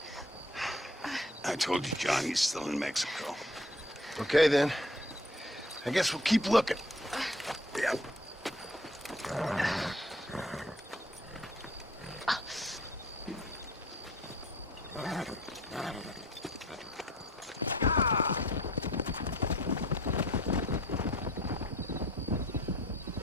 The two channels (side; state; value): both; normal; correlation 0.54